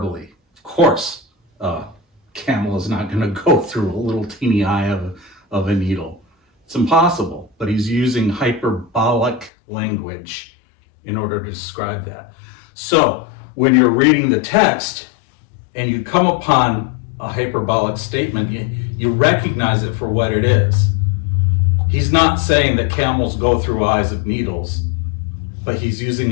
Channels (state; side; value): drops out; right; at 9.5 s